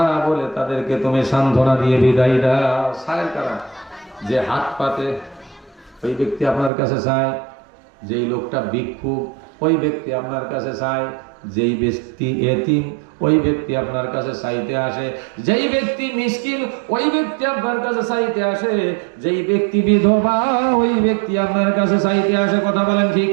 বলে তাদেরকে তুমি সান্ত্বনা দিয়ে বিদায় দাও। সায়ের কারা? যে হাত পাতে ওই ব্যক্তি আপনার কাছে চায়, যেই লোকটা ভিক্ষুক ওই ব্যক্তি আপনার কাছে চায়, যেই ব্যক্তি এতিম ওই ব্যক্তি আপনার কাছে চাইতে আসে, যেই ব্যক্তি মিসকিন ওই ব্যক্তি আপনার কাছে চাইতে আসে, যেই ব্যক্তি বিধবা ওই ব্যক্তি আপনার কাছে চাইতে আসে। কথা বলেন ঠিক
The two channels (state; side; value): drops out; left; at 6.7 s